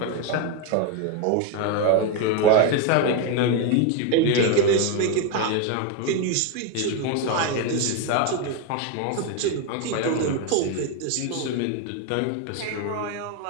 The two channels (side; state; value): both; different; correlation 0.02